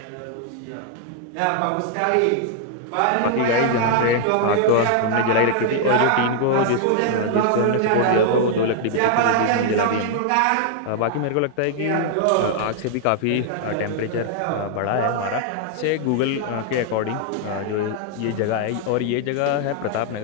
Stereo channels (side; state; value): both; different; correlation 0.00